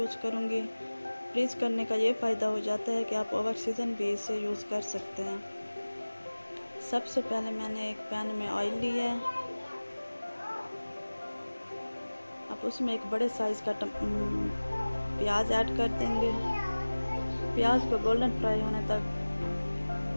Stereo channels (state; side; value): inverted; both; correlation -1.00